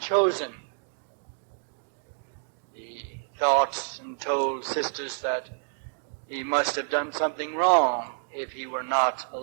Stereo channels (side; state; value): left; silent; digital silence